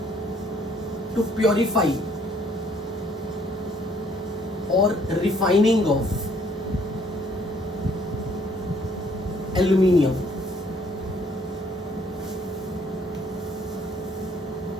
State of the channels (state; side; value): normal; both; correlation 0.63